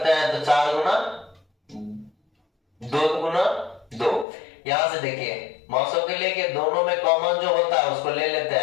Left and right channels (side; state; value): right; drops out; at 4.2 s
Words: हैं तो 4 गुना 2 गुना 2। यहां से देखिए मौसम के लेके दोनों में कॉमन जो होता है उसको ले लेते